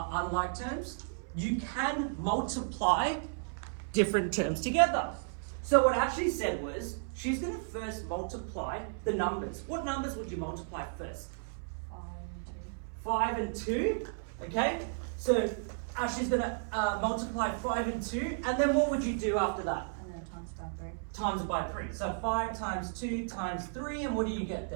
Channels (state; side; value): silent; left; 55 dB below the other